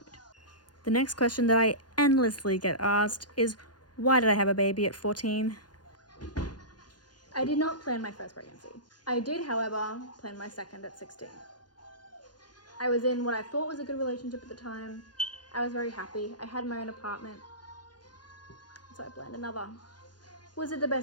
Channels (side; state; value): right; late; 0.70 ms